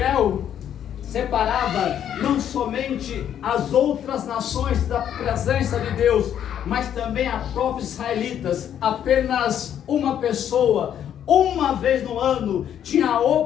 separava não somente as outras nações da presença de Deus, mas também a próprios israelitas. Apenas uma pessoa, uma vez no ano, tinha a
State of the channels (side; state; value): right; quieter; 9.8 dB